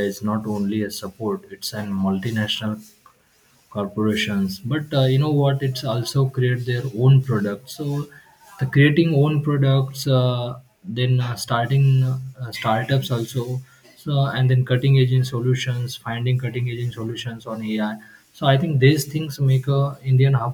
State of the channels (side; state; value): both; identical; correlation 1.00